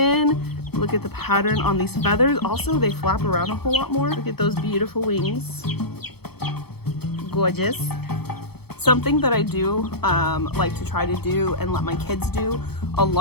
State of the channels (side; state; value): right; late; 0.97 ms